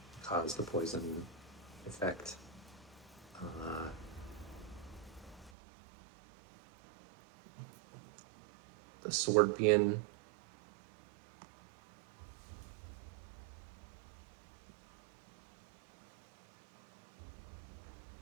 cause the poison effect. the Scorpion.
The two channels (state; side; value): drops out; left; at 5.5 s